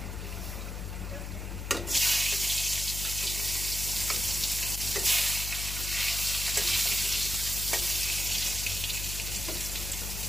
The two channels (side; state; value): left; noise; hum, 6 dB below the sound